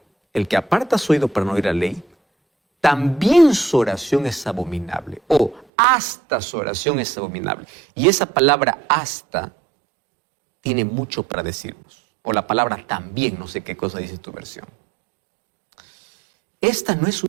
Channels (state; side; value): drops out; left; at 5.7 s